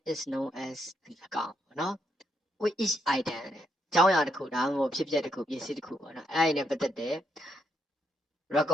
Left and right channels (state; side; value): normal; both; correlation 0.77